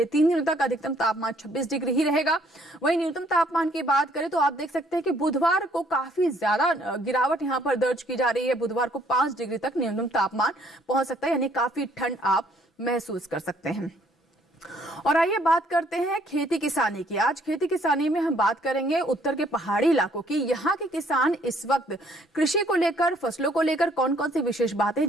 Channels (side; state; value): both; normal; correlation 0.64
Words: 3 दिनों तक अधिकतम तापमान 26 डिग्री ही रहेगा। वहीं न्यूनतम तापमान की बात करें तो आप देख सकते हैं कि बुधवार को काफी ज्यादा गिरावट यहां पर दर्ज की जा रही है, बुधवार को 5 डिग्री तक न्यूनतम तापमान पहुंच सकता है, यानी काफी ठंड आप महसूस कर सकते हैं। और आइए बात करते हैं खेती किसानी की। आज खेती किसानी में हम बात करेंगे उत्तर के पहाड़ी इलाकों की। यहाँ के किसान इस वक्त कृषि को लेकर, फसलों को लेकर कौन कौन सी विशेष बातें